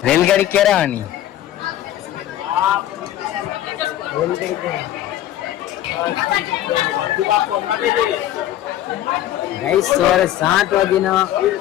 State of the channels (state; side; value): quieter; right; 12.7 dB